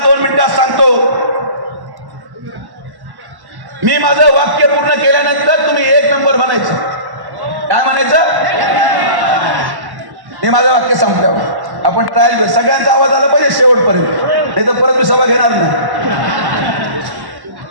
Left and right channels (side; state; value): left; late; 1.1 ms